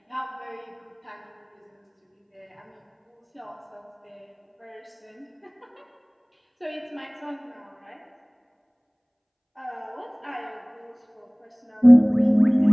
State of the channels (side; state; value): both; identical; correlation 1.00